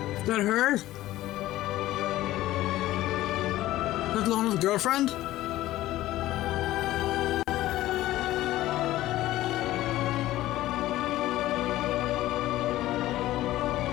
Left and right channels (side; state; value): right; quieter; 15.6 dB